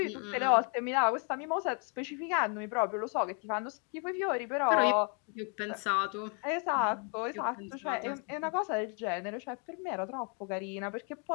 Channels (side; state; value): right; quieter; 37.9 dB